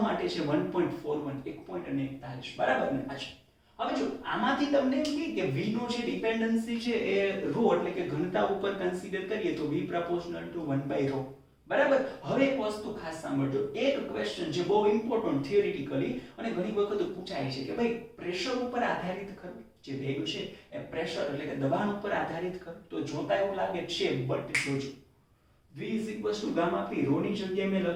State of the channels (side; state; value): both; identical; correlation 1.00